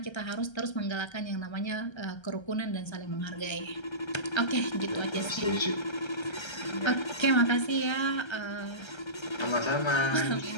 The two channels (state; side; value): late; right; 1.3 ms